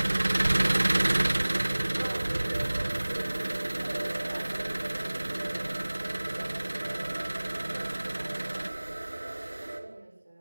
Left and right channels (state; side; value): inverted; both; correlation -1.00